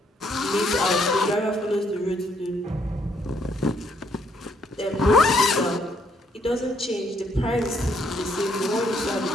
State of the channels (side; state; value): both; normal; correlation 0.70